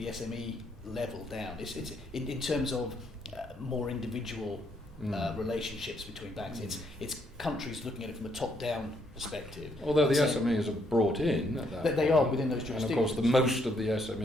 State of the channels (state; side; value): normal; both; correlation 0.72